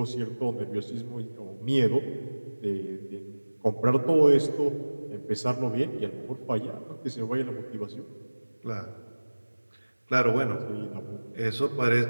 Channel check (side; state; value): both; inverted; correlation -1.00